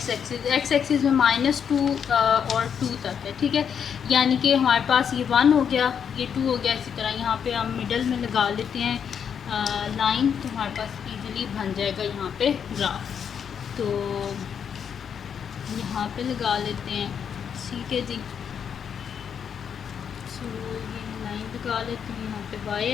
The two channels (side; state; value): right; quieter; 7.6 dB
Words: एक्सिस में -2 और 2 तक है। ठीक है, यानी कि हमारे पास ये 1 हो गया, ये 2 हो गया। इसी तरह यहाँ पे हम मिडल में लगा लेते हैं लाइन, तो हमारे पास इजीली बन जाएगा यहाँ पे ग्राफ। तो यहाँ पे लगा लेते हैं। ठीक है जी, सो ये लाइन लगा लेते हैं यहाँ पे वाई